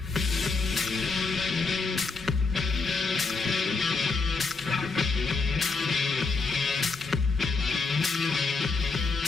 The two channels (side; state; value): right; quieter; 4.2 dB